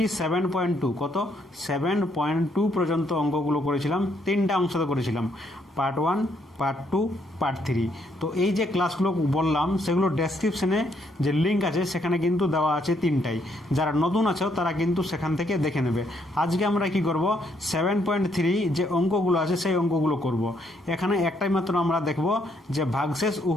7.2 7.2 পর্যন্ত অঙ্কগুলো করেছিলাম। তিনটা অংশতে করেছিলাম, পার্ট 1, পার্ট 2, পার্ট 3। তো এই যে ক্লাসগুলো বললাম সেগুলো ডেসক্রিপশনে যে লিঙ্ক আছে সেখানে কিন্তু দেওয়া আছে তিনটাই। যারা নতুন আছো তারা কিন্তু সেখান থেকে দেখে নেবে। আজকে আমরা কি করব, 7.3 যে অঙ্কগুলো আছে সেই অঙ্কগুলো করব। এখানে একটাই মাত্র আমরা দেখব যে ভাগশেষ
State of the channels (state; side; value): normal; both; correlation 0.72